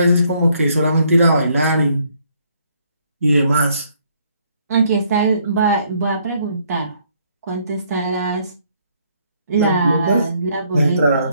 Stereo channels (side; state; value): both; inverted; correlation -0.68